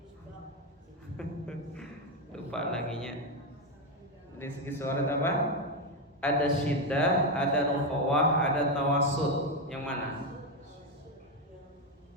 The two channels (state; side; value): normal; both; correlation 0.07